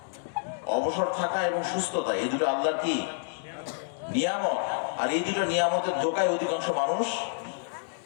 অবসর থাকা এবং সুস্থতা, এই দুটো আল্লাহর কি নিয়ামত। আর এই দুটো নিয়ামতের ধোঁকায় অধিকাংশ মানুষ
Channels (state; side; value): silent; right; digital silence